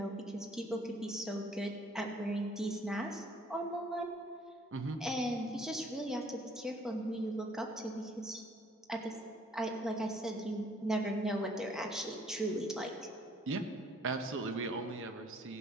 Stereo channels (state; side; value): normal; both; correlation 0.61